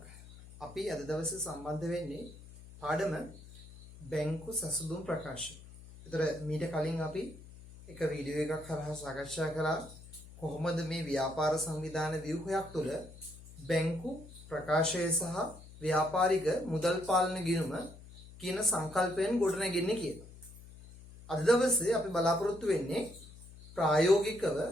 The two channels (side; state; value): left; noise; hum, 18 dB below the sound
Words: අපි අද දවසේ සම්බන්ධ වෙන්නේ පාඩම බැංකු සසුදුම් ප්‍රකාශය. ඒතර මීට කලින් අපි එක වීඩියෝ එකක් හරහා සාකච්ඡා කළා කොහොමද මේ ව්‍යාපාර සංවිධාන ව්‍යුහයක් තුළ බැංකු ප්‍රකාශය සහ ව්‍යාපාරික මුදල් පාලන ගිණුම කියන සංකල්පයෙන් ගොඩනැගෙන්නේ කියලා. අද දවසේ අපි බලාපොරොත්තු වෙන්නේ ප්‍රායෝගිකව